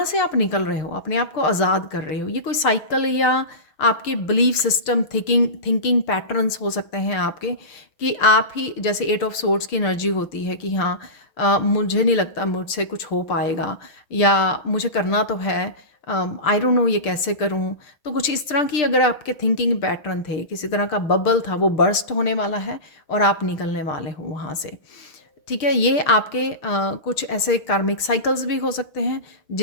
से आप निकल रहे हो, अपने आप को आज़ाद कर रहे हो। ये कोई साइकिल या आपके बिलीफ सिस्टम, थिंकिंग पैटर्न्स हो सकते हैं आपके, कि आप ही, जैसे 8 ऑफ सोर्ड्स की एनर्जी होती है कि हाँ मुझे नहीं लगता मुझसे कुछ हो पाएगा, या मुझे करना तो है, आई डोंट नो ये कैसे करूं। तो कुछ इस तरह की अगर आपके थिंकिंग पैटर्न थे, किसी तरह का बबल था, वो बर्स्ट होने वाला है और आप निकलने वाले हो वहाँ से। ठीक है, ये आपके कुछ ऐसे कार्मिक साइकिल्स भी हो सकते हैं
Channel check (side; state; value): right; late; 6.7 ms